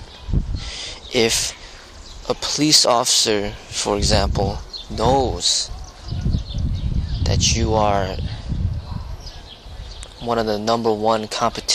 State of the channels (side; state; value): both; identical; correlation 1.00